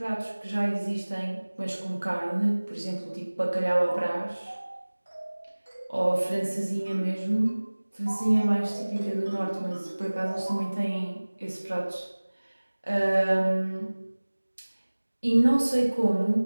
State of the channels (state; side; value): inverted; both; correlation -1.00